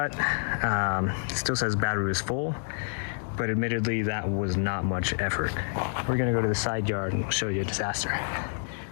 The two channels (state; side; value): silent; right; digital silence